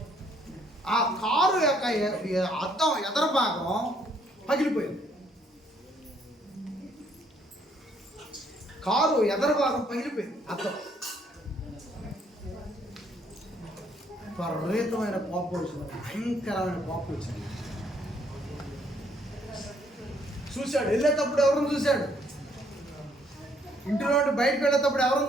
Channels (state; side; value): normal; both; correlation 0.67